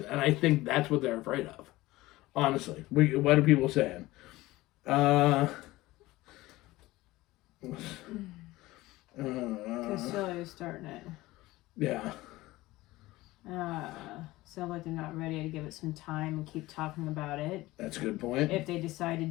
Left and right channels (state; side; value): quieter; right; 18.6 dB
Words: and I think that's what they're afraid of. Honestly, what are people saying? Castillo's starting it. Yeah. Sounds like they're not ready to give it some time and keep talking about it. That's a good point. If they decide to